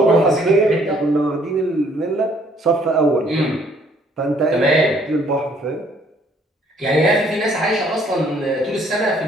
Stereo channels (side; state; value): both; normal; correlation 0.63